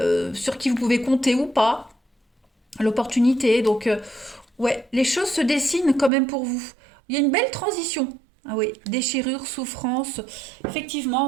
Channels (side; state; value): left; drops out; at 6.1 s